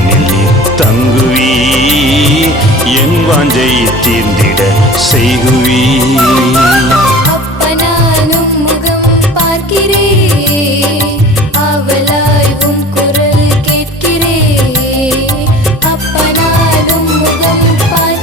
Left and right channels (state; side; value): normal; both; correlation 0.42